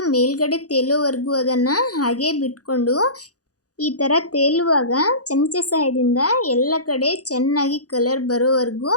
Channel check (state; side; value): late; right; 0.67 ms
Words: ಮೇಲ್ಗಡೆ ತೇಲೋವರೆಗೂ ಅದನ್ನು ಹಾಗೇ ಬಿಟ್ಕೊಂಡು ಈ ಥರ ತೇಲುವಾಗ ಚಮಚ ಸಹಾಯದಿಂದ ಎಲ್ಲ ಕಡೆ ಚೆನ್ನಾಗಿ ಕಲರ್ ಬರೋವರೆಗೂ